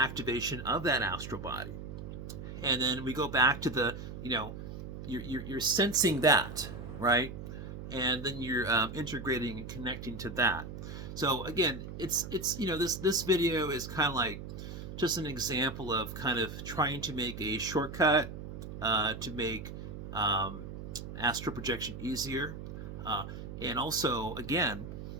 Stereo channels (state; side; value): noise; right; hum, 9 dB below the sound